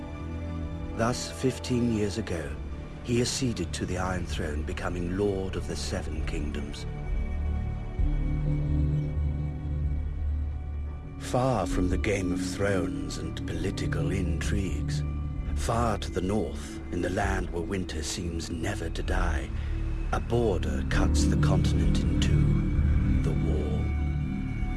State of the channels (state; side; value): identical; both; correlation 1.00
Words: Thus, 15 years ago, he acceded to the Iron Throne, becoming Lord of the Seven Kingdoms. Far from the Game of Thrones and political intrigues, far to the north, in the land where winter seems never to die, a border cuts the continent in two, the Wall.